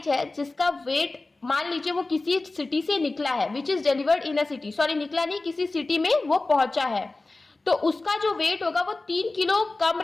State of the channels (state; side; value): quieter; right; 3.2 dB